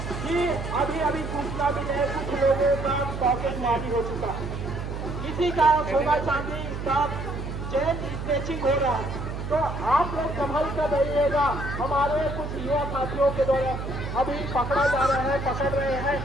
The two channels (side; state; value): right; noise; hum, 6 dB below the sound